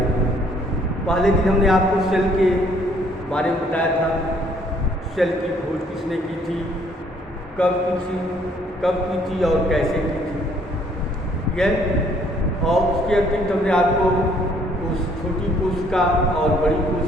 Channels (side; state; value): both; normal; correlation 0.63